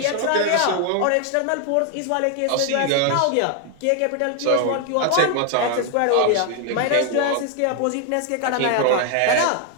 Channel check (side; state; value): both; different; correlation 0.01